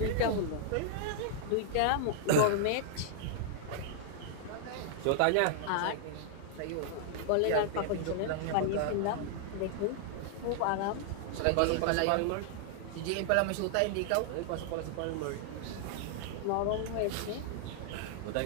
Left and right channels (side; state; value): both; different; correlation -0.01